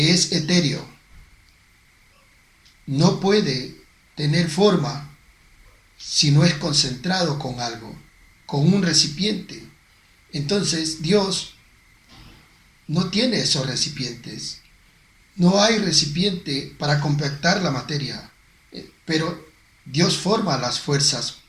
es etéreo no puede tener forma si no es concentrado con algo, con un recipiente, entonces Dios no tiene esos recipientes. No hay recipiente para compactar la materia, pero Dios forma las fuerzas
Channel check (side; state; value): both; identical; correlation 1.00